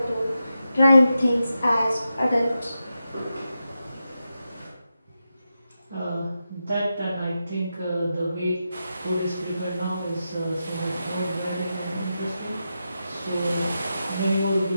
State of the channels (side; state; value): both; inverted; correlation -0.89